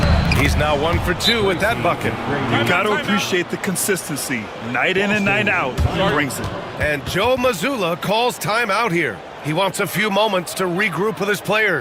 He's now 1 for 2 with that bucket. You got to appreciate the consistency. Night in and night out, he brings it. And Joe Mazzulla calls timeout here. He wants a few moments to regroup with his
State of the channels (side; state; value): both; identical; correlation 1.00